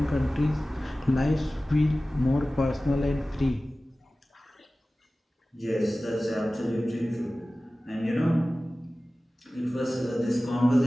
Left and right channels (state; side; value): normal; both; correlation 0.97